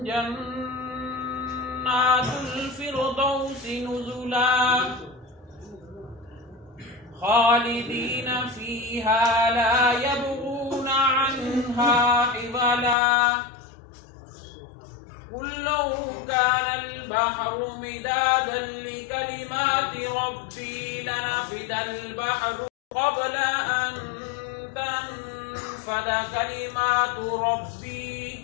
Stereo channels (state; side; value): drops out; right; at 13.0 s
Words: जन्नातुल फिरदौसि नुज़ुला खालिदीन फीहा ला यबगूना अन्हा हिवला। कुल लौ कानल बहरु मिदादन लिकलिमाति रब्बी लनफिदल बहरु क़ब्ल अन तनफ़द कलिमातु